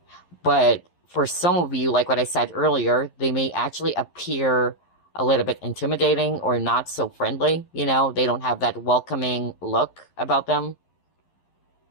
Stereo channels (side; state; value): right; late; 11 ms